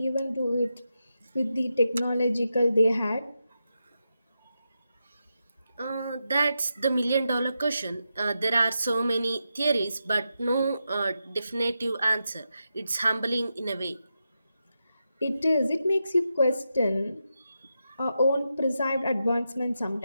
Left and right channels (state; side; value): inverted; both; correlation -0.87